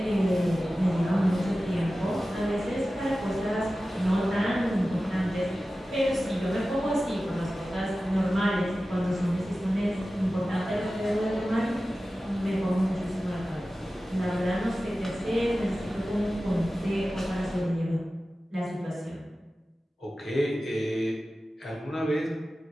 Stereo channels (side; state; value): both; normal; correlation 0.95